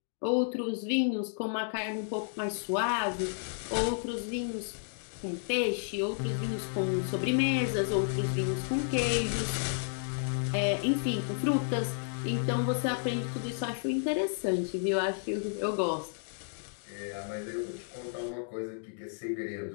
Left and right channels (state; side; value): silent; right; digital silence